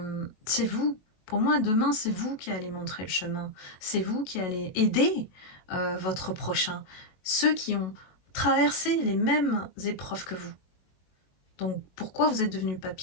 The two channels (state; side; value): late; right; 22 ms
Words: c'est vous, pour moi demain c'est vous qui allez montrer le chemin, c'est vous qui allez aider votre prochain, ceux qui ont traversé les mêmes épreuves que vous. Donc pourquoi vous êtes devenu